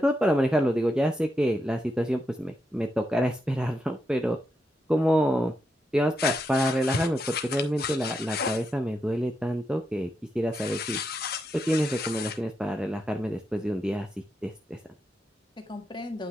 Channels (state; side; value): normal; both; correlation 0.84